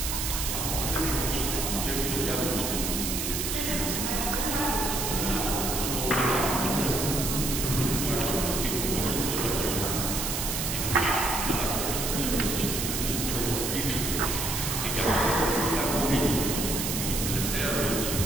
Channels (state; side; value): noise; right; hiss, 2 dB below the sound